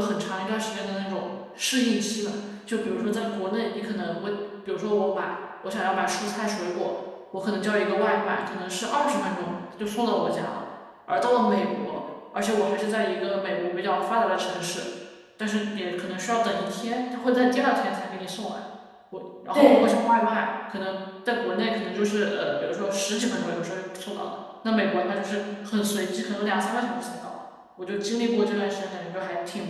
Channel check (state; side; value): identical; both; correlation 1.00